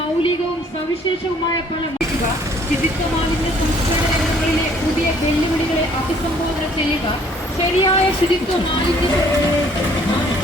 സവിശേഷവുമായ പല ശുചിത്വ മാലിന്യ സംസ്കരണ രംഗങ്ങളിലെ പുതിയ വെല്ലുവിളികളെ അഭിസംബോധന ചെയ്യുക, ശരിയായ ശുചിത്വ മാലിന്യ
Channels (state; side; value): normal; both; correlation 0.60